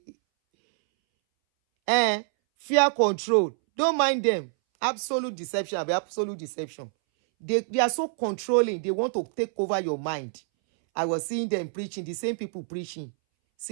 Fear control. Don't mind them. Absolute deception. Absolute deception. They are so controlling. They want to take over your mind. I was seeing them preaching, the same people preaching. See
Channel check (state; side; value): silent; left; 61 dB below the other